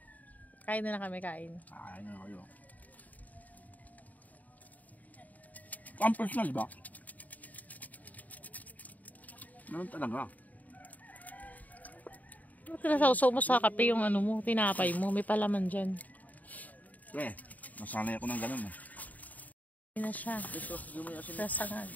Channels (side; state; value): right; late; 0.076 ms